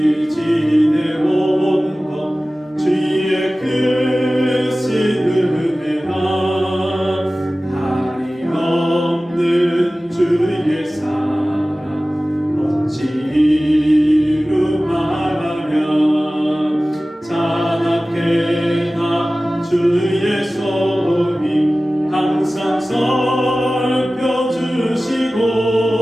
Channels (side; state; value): both; normal; correlation 0.97